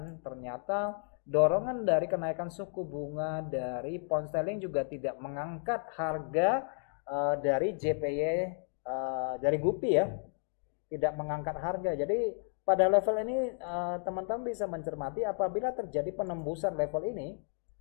Ternyata dorongan dari kenaikan suku bunga dari pound sterling juga tidak mengangkat harga dari JPY dari GBP ya, tidak mengangkat harga. Jadi pada level ini teman-teman bisa mencermati apabila terjadi penembusan level ini.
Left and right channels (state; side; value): silent; right; 56 dB below the other